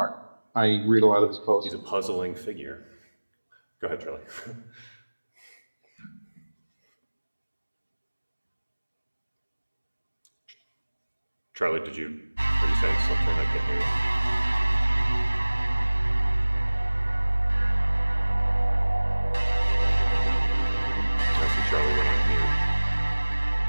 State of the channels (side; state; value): both; inverted; correlation -1.00